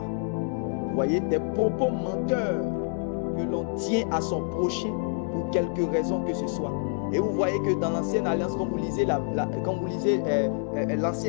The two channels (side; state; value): right; silent; 57 dB below the other